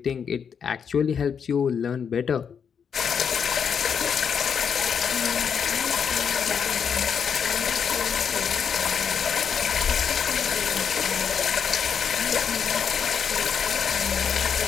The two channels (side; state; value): right; quieter; 7.1 dB